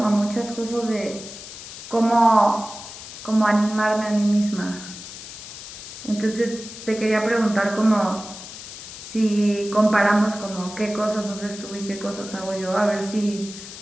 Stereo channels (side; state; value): left; noise; hiss, 13 dB below the sound